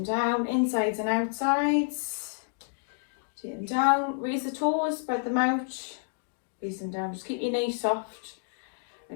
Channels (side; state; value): right; silent; digital silence